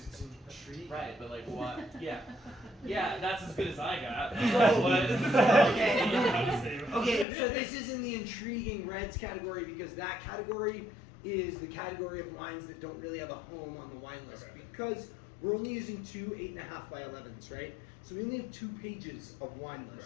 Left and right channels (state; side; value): drops out; right; at 7.2 s